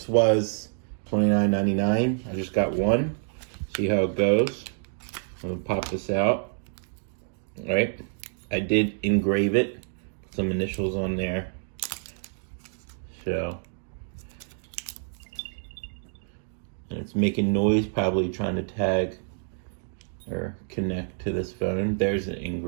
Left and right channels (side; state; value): left; silent; digital silence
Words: was $29.99. I just got one. See how it goes. I'm gonna pop this out. All right. I did engrave it. Put some initials on there. So, and it's making noise, probably trying to tag or connect to this phone. There's the